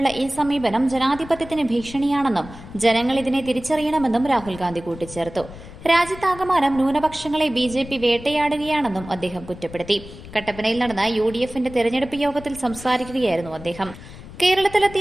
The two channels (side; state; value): left; noise; rumble, 16 dB below the sound